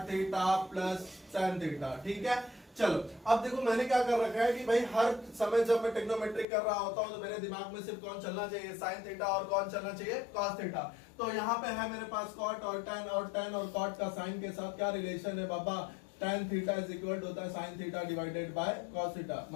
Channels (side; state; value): right; drops out; at 6.5 s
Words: theta plus tan theta, ठीक है। चलो अब देखो मैंने क्या कर रखा है कि भाई हर समय जब मैं ट्रिग्नोमेट्री कर रहा होता हूं तो मेरे दिमाग में सिर्फ कौन चलना चाहिए, साइन थीटा, और कौन चलना चाहिए, कॉस थीटा। तो यहाँ पे है मेरे पास कॉट और टेन, और टेन और कॉट का साइन के साथ क्या रिलेशन है बाबा, tan theta is equal to होता है sine theta divided by cos theta.